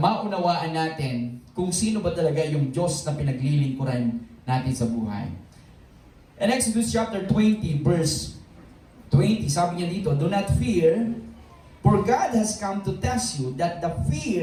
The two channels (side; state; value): both; identical; correlation 1.00